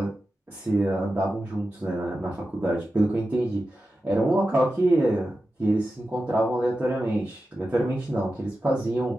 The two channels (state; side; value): normal; both; correlation 0.92